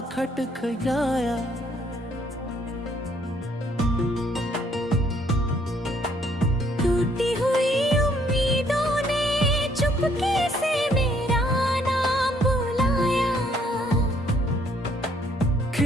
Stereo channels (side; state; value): both; normal; correlation 0.66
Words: खटखटाया। टूटी हुई उम्मीदों ने चुपके से मेरा नाम बुलाया।